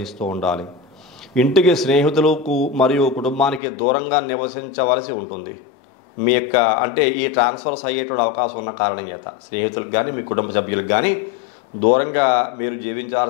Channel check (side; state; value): right; drops out; at 3.6 s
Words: ఉండాలి. ఇంటికి స్నేహితులకు మరియు కుటుంబానికి దూరంగా నివసించవలసి ఉంటుంది. మీ యొక్క ఈ ట్రాన్స్ఫర్స్ అయ్యేటువంటి అవకాశం ఉన్న కారణం చేత స్నేహితులకు కానీ మీ కుటుంబ సభ్యులకు కానీ దూరంగా మీరు